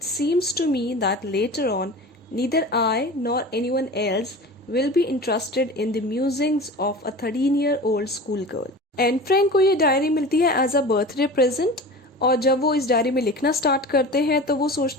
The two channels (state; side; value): normal; both; correlation 0.35